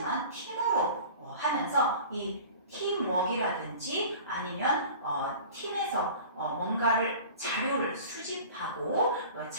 팀으로 하면서 이 팀워크라든지 아니면 팀에서 뭔가를 자료를 수집하고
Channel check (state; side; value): inverted; both; correlation -0.41